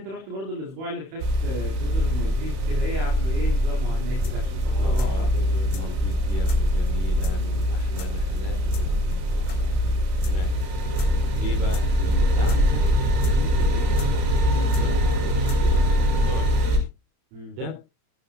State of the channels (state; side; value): late; left; 32 ms